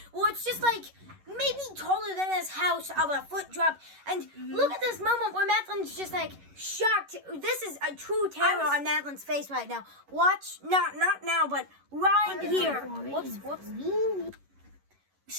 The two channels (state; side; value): late; left; 11 ms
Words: Well, it's just like maybe taller than this house of a foot drop. And look at this moment where Madeline's just like shocked. This is a true terror on Madeline's face right now. Watch, not now, but right here. Whoops.